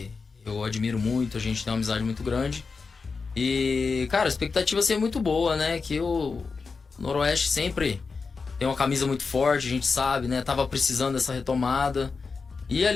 eu admiro muito, a gente tem uma amizade muito grande, e, cara, a expectativa é muito boa, né, que o Noroeste sempre tem uma camisa muito forte, a gente sabe, né, tava precisando dessa retomada. E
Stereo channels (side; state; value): right; quieter; 4.7 dB